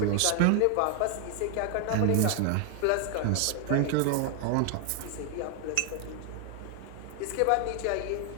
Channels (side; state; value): both; different; correlation 0.00